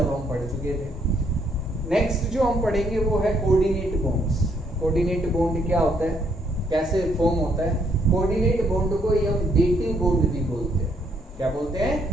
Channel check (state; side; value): normal; both; correlation 0.70